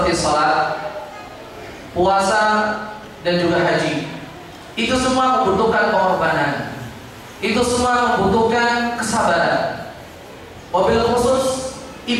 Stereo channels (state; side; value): identical; both; correlation 1.00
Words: salat, puasa, dan juga haji. Itu semua membutuhkan pengorbanan. Itu semua membutuhkan kesabaran. Wabil khusus